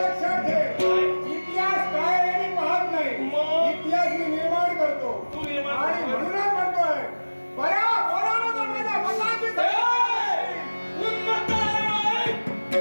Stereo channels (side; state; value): both; inverted; correlation -1.00